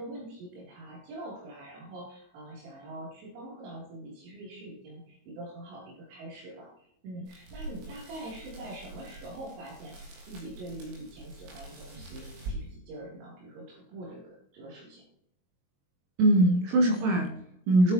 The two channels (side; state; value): left; late; 22 ms